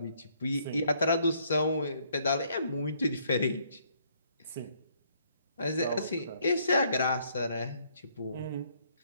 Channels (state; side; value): inverted; both; correlation -0.67